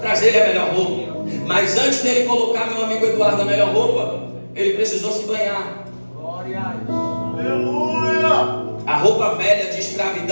trazer a melhor roupa. Mas antes dele colocar meu amigo Eduardo a melhor roupa, ele precisou se banhar. Glória a Deus. Aleluia. A roupa velha de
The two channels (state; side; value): inverted; both; correlation -1.00